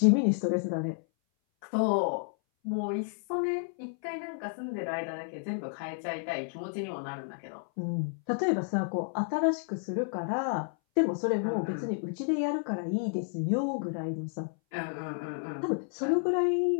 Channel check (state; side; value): silent; right; 57 dB below the other